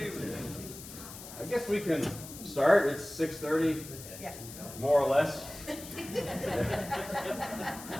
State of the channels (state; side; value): noise; left; hiss, 13 dB below the sound